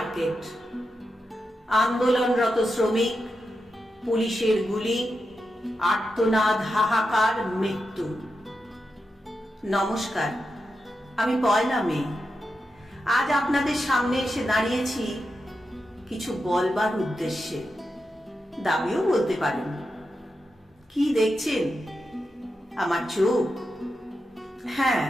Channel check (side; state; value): both; normal; correlation 0.88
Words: আন্দোলনরত শ্রমিক, পুলিশের গুলি, আর্তনাদ, হাহাকার, মৃত্যু। নমস্কার, আমি পয়লা মে। আজ আপনাদের সামনে এসে দাঁড়িয়েছি কিছু বলবার উদ্দেশ্যে, দাবিও বলতে পারেন। কি দেখছেন? আমার চোখ? হ্যাঁ,